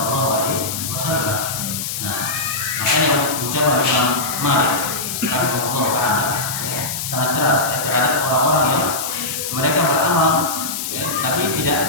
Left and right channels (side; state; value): left; noise; hiss, 4 dB below the sound